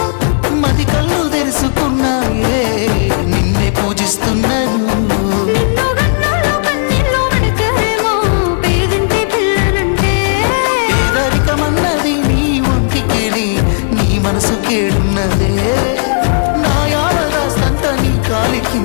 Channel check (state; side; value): silent; right; digital silence